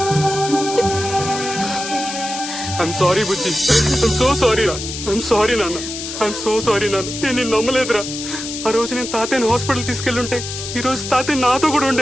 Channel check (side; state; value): left; noise; hiss, 7 dB below the sound